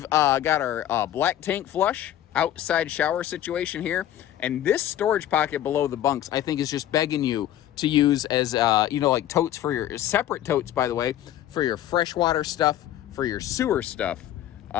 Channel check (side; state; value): right; quieter; 12.2 dB